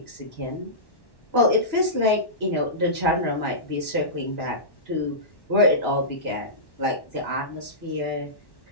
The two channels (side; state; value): right; late; 1.1 ms